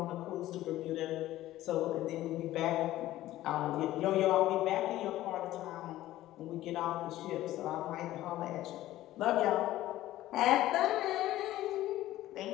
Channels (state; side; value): quieter; right; 14.9 dB